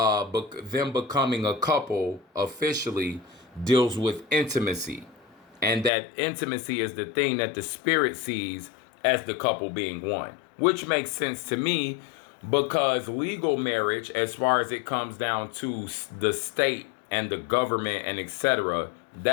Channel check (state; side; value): drops out; right; at 5.9 s